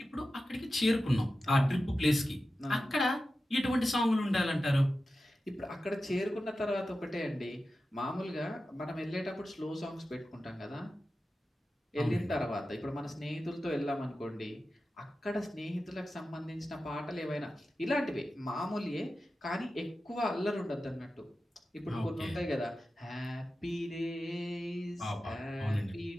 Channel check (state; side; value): normal; both; correlation 0.93